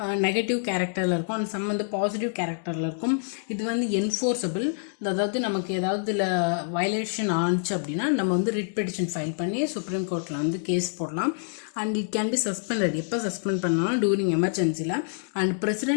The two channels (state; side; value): silent; right; digital silence